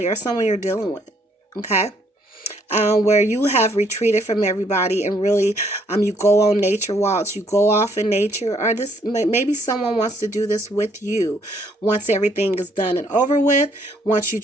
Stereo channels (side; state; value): both; normal; correlation 0.68